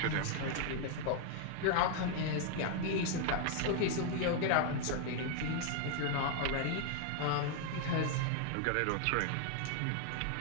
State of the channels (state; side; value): different; both; correlation 0.00